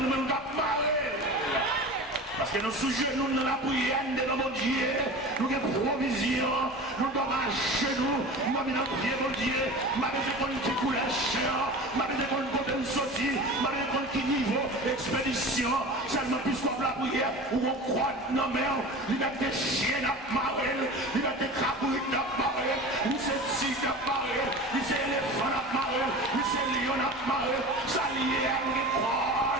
même pas marrer. Parce que nous sujets, nous dans la prière de mon Dieu, nous avons provision, nous devons marcher nous, nous avons dans prier mon Dieu, nous avons une petite couleur chien, nous avons une côté de sortie, nous avons un petit niveau, expédition, seulement puisqu'on la prière, où on croit dans mer, il y a des chiens à marrer, il y a des crabouilles à marrer, il y a des tigres à marrer, il y a des éléphants à marrer, il y a des lions à marrer, ça lié à nous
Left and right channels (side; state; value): both; normal; correlation 0.34